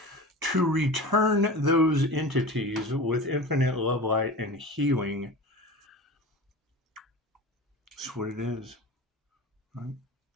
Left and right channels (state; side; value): normal; both; correlation 0.33